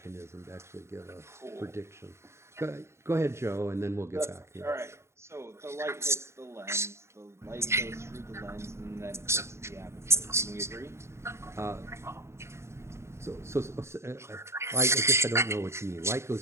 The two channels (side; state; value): left; late; 0.13 ms